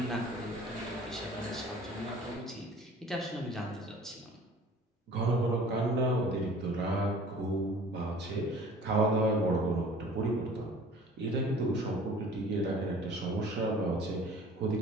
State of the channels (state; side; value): normal; both; correlation 0.48